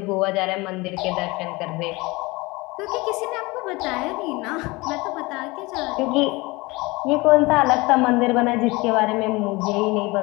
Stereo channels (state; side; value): quieter; right; 23.4 dB